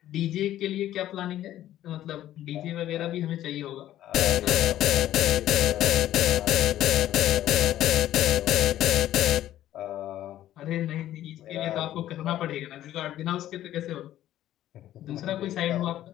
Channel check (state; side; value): quieter; right; 12.9 dB